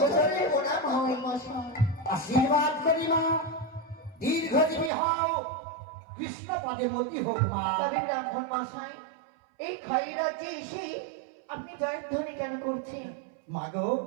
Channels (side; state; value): left; drops out; at 4.9 s